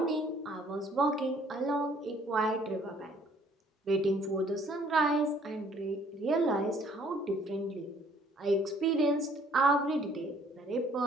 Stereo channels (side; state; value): both; normal; correlation 0.60